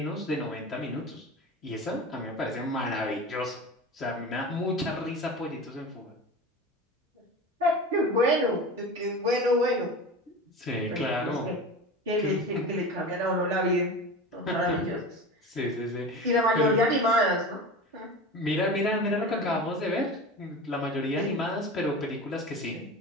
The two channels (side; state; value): both; normal; correlation 0.31